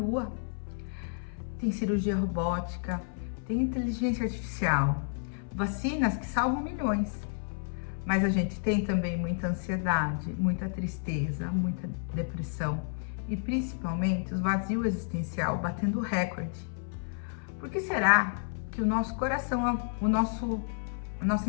Tem cirurgia robótica, tem inteligência artificial, vacinas que salvam milhões. Mas a gente tem também muita ansiedade, muita tristeza, muita depressão e principalmente o vazio existencial batendo recorde. Por que será que o nosso coração, a nossa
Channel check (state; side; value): silent; right; 57 dB below the other